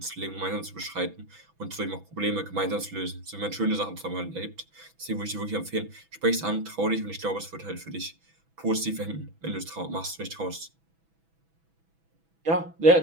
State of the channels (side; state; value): left; late; 6.1 ms